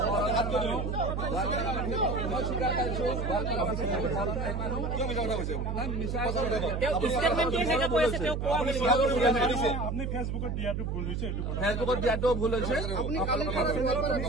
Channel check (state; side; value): noise; right; hum, 2 dB below the sound